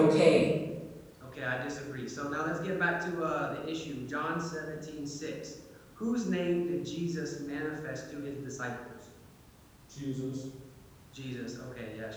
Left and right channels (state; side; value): identical; both; correlation 1.00